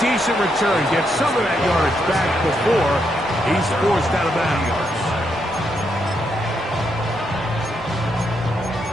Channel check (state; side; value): normal; both; correlation 0.79